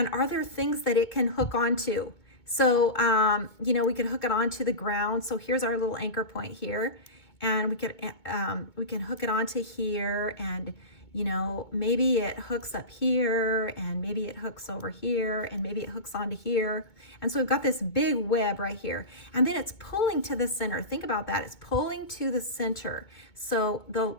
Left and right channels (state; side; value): late; right; 2.2 ms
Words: are there things that it can hook onto? So, you know, we could hook it onto the ground. So here's our little anchor point here. And we can hook it onto here, and you know, maybe it hooks up here, and maybe it hooks over here, and maybe it hooks onto here. And so we've got this big web right here. And then it's pulling to the center. Think about that. It's pulling to the center. So